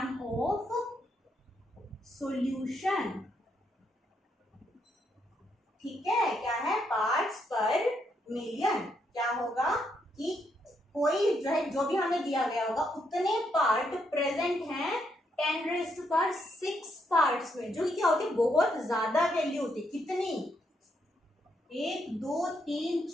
of solution. ठीक है, क्या है? पार्ट्स पर मिलियन। क्या होगा कि कोई जो भी हमें दिया गया होगा उतने पार्ट प्रेजेंट हैं 10⁶ पार्ट्स में, जो कि क्या होती है? बहुत ज्यादा वैल्यू होती है। कितनी? 1 2 3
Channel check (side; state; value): both; normal; correlation 0.77